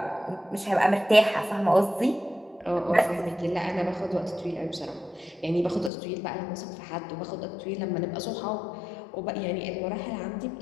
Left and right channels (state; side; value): drops out; right; at 5.9 s